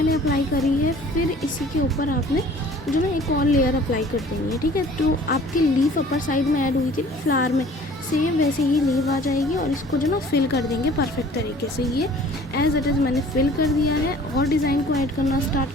अप्लाई करी है, फिर इसी के ऊपर आपने जो ना एक और लेयर अप्लाई कर देनी है। ठीक है, तो आपकी लीफ अपर साइड में ऐड हुई थी फ्लावर में, सेम वैसे ही लीव आ जाएगी, और इसको जो ना फिल कर देंगे परफेक्ट तरीके से। ये एज इट इज़ मैंने फिल कर दिया है, और डिज़ाइन को ऐड करना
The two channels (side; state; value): both; normal; correlation 0.50